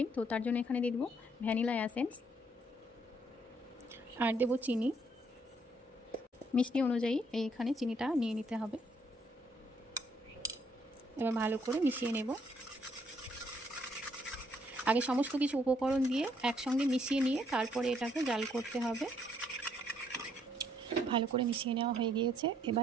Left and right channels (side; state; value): both; normal; correlation 0.69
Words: তো তার জন্য এখানে দিয়ে দেবো ভ্যানিলা এসেন্স। আর দেবো চিনি, মিষ্টি অনুযায়ী এইখানে চিনিটা নিয়ে নিতে হবে। এবার ভালো করে মিশিয়ে নেব। আগে সমস্ত কিছু উপকরণ দিয়ে একসঙ্গে মিশিয়ে নিয়ে তারপরে এটাকে জাল করতে হবে। ভালো করে মিশিয়ে নেওয়া হয়ে গিয়েছে।